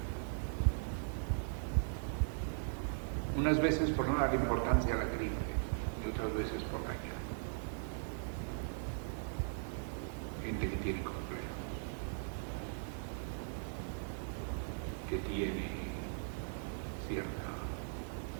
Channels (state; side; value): silent; left; digital silence